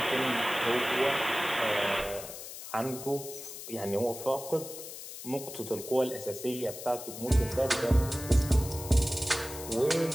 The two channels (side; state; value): left; noise; hiss, 11 dB below the sound